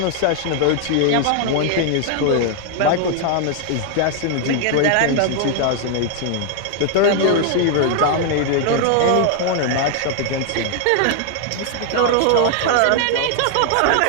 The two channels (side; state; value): both; different; correlation 0.00